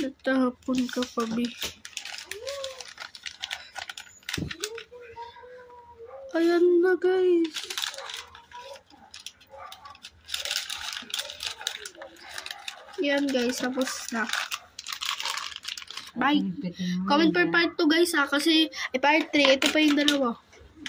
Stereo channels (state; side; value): identical; both; correlation 1.00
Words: ka pa, be. Ayan na, guys. Yan, guys. Tapos na. Bye. Comment per part 2, guys, ha. Kasi, part 3. Ito pa yung 2.